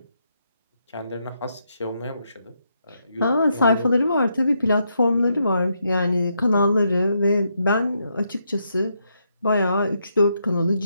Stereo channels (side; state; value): both; inverted; correlation -0.79